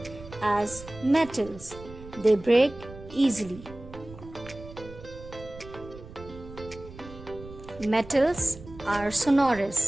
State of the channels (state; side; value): noise; right; rumble, 16 dB below the sound